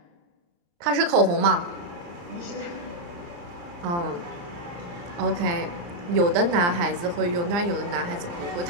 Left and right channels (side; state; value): left; late; 35 ms